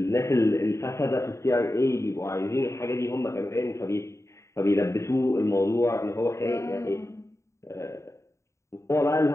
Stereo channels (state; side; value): late; right; 0.14 ms